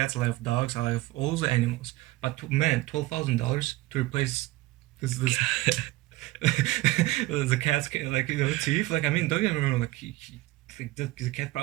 I love dogs. I love all the animals. But man, $12,000 to replace this the cat's like teeth. Like I mean, don't get me wrong. Like like the cat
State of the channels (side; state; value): left; quieter; 18.9 dB